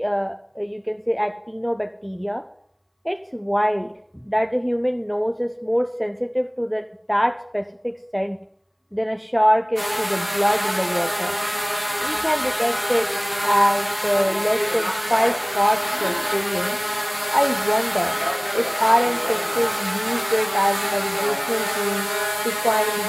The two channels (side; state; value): both; identical; correlation 1.00